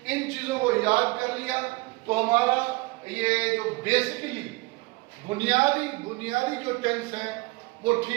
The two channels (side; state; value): left; quieter; 23.4 dB